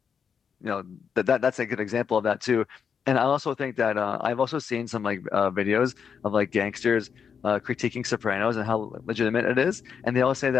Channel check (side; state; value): right; quieter; 6.8 dB